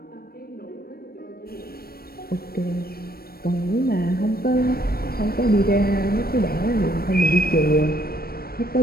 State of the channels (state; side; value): late; right; 0.44 ms